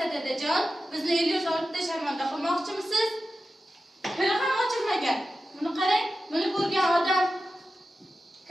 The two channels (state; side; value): normal; both; correlation 0.93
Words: dadajon. Bizni Ilyos olibda sharmanda qilmoqchimisiz? Tili ham ochilmagan. Buni qarang, buni ko'rgan odam